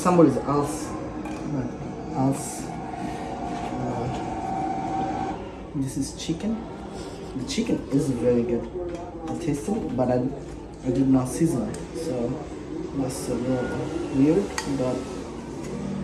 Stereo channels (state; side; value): identical; both; correlation 1.00